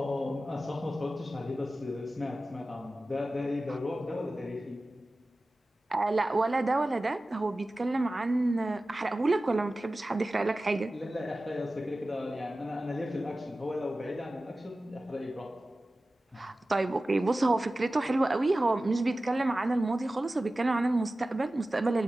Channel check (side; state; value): both; normal; correlation 0.96